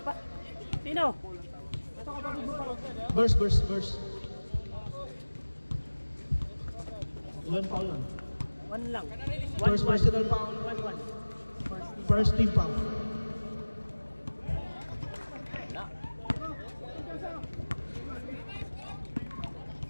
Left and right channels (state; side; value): inverted; both; correlation -1.00